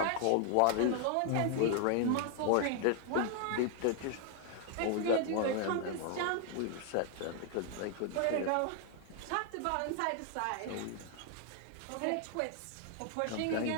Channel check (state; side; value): different; both; correlation 0.00